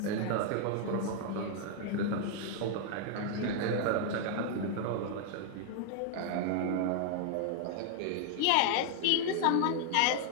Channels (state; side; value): different; both; correlation -0.01